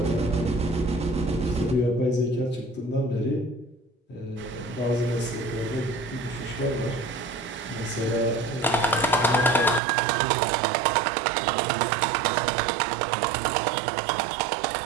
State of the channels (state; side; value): drops out; left; at 9.8 s